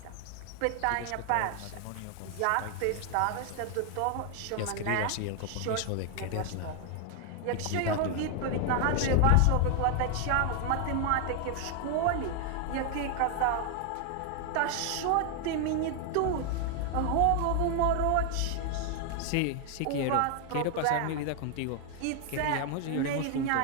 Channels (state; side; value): different; both; correlation 0.00